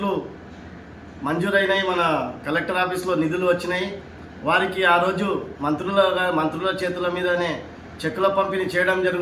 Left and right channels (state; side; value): identical; both; correlation 1.00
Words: మంజూరైనాయి. మన కలెక్టర్ ఆఫీస్లో నిధులు వచ్చినాయి. వారికి ఆ రోజు మంత్రుల చేతుల మీదనే చెక్కుల పంపిణీ చేయడం